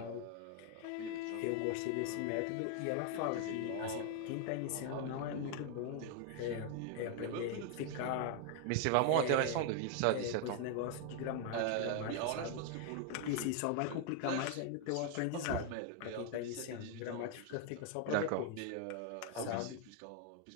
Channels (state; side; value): different; both; correlation 0.00